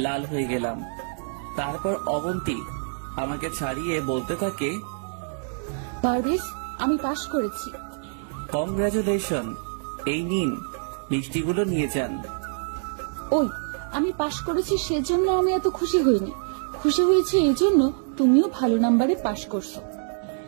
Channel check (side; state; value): left; silent; 61 dB below the other